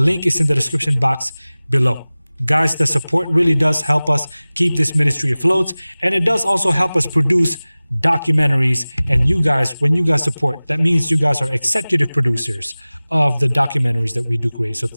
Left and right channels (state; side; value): inverted; both; correlation -0.99